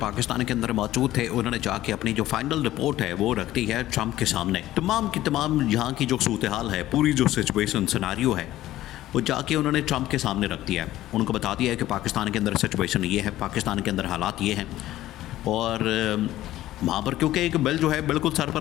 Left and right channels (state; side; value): quieter; right; 14.7 dB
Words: के अंदर मौजूद थे उन्होंने जाके अपनी जो फाइनल रिपोर्ट है वो रख दी है ट्रंप के सामने। तमाम की तमाम यहाँ की जो सूरत हाल है, पूरी जो सिचुएशन सिनारियो है, वो जाके उन्होंने ट्रंप के सामने रख दिया है। उनको बता दिया है कि पाकिस्तान के अंदर सिचुएशन ये है, पाकिस्तान के अंदर हालात ये हैं। और वहाँ पर क्योंकि एक बिल जो है बिल्कुल सर